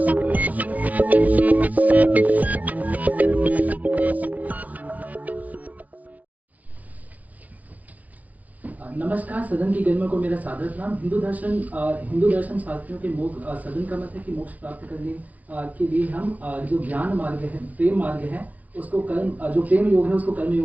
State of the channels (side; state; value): left; late; 0.072 ms